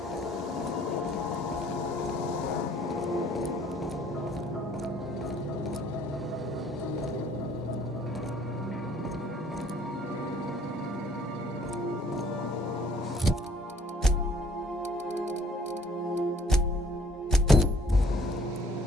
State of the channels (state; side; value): normal; both; correlation 0.59